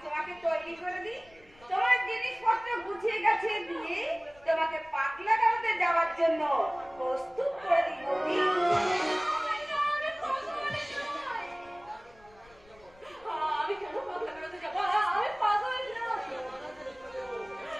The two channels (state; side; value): noise; left; rumble, 27 dB below the sound